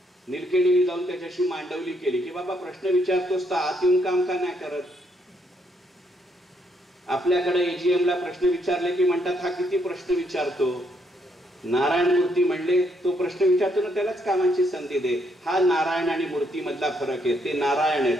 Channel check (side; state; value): both; normal; correlation 0.73